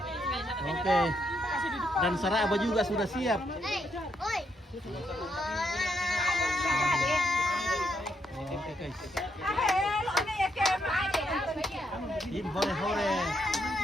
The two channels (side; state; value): both; normal; correlation 0.77